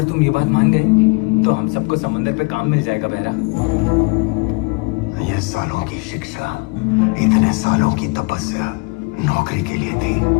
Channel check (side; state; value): right; quieter; 29.4 dB